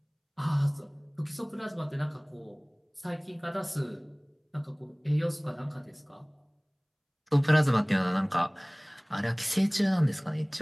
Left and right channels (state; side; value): identical; both; correlation 1.00